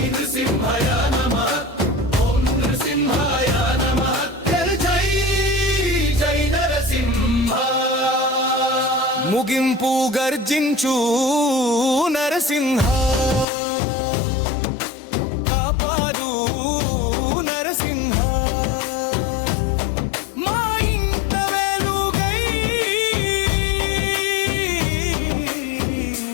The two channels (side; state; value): right; drops out; at 13.5 s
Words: నృసింహాయ నమః, ఓం నృసింహాయ నమః. ముగింపు గర్జించు నరసింహ, కాపాడు నరసింహ. మా ఇంట వెలుగై